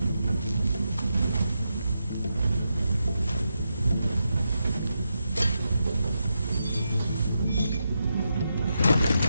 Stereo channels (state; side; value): inverted; both; correlation -0.86